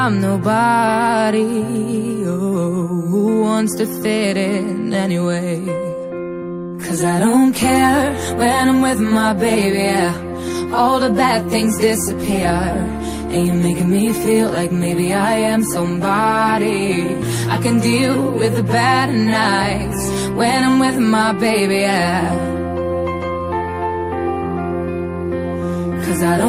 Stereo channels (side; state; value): both; identical; correlation 1.00